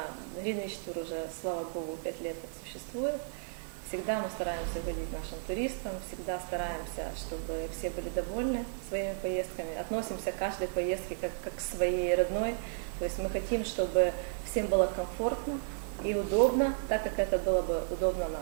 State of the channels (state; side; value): silent; left; 55 dB below the other